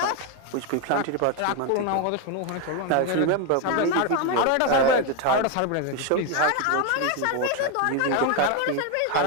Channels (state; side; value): different; both; correlation 0.02